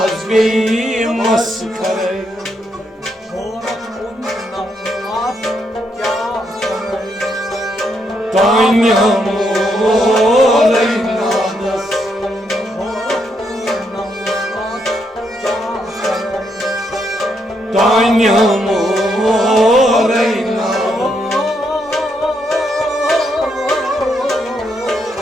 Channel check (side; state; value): both; normal; correlation 0.77